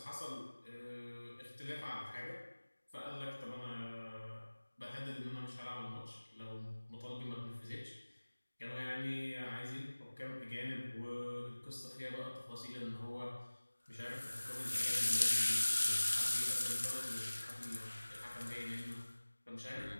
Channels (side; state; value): both; inverted; correlation -1.00